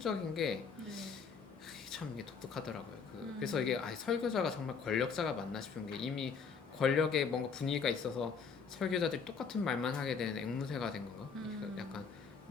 게 참 이게 독특하더라고요. 그래서 이게 설교자가 정말 권력자가 맞나 싶은 게 이미 권력에 뭔가 분위기가 있어서 설교자들이 똑같은 말만 하게 되는 앵무새가 된 건가? 약간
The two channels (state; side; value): quieter; right; 5.8 dB